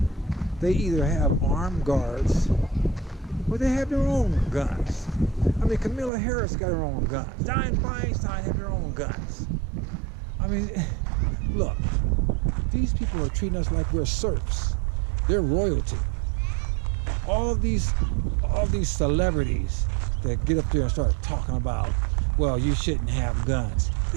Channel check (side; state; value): left; drops out; at 6.1 s